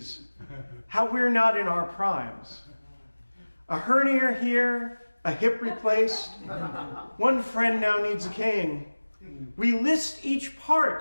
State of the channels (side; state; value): both; inverted; correlation -1.00